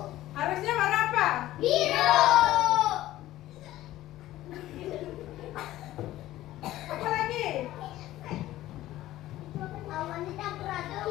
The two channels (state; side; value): quieter; right; 15.1 dB